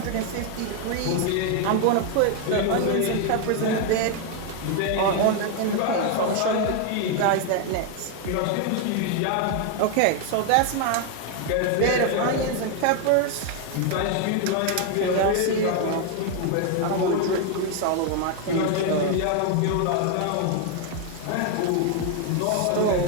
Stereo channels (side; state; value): both; different; correlation 0.01